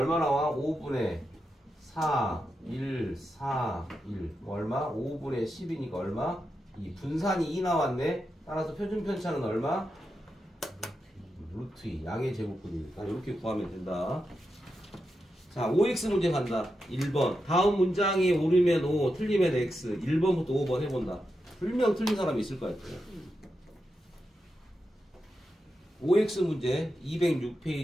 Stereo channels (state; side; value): normal; both; correlation 0.87